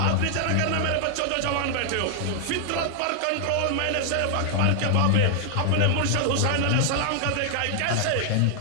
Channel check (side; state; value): both; different; correlation 0.00